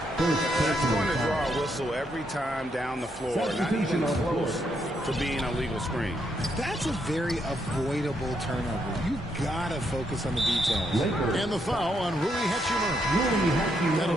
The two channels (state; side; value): normal; both; correlation 0.77